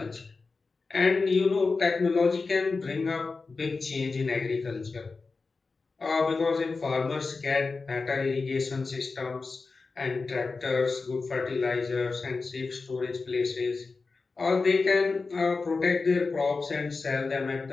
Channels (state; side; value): quieter; right; 4.2 dB